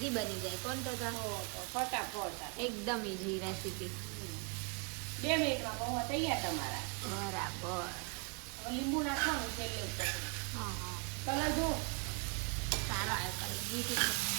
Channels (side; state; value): left; quieter; 35.9 dB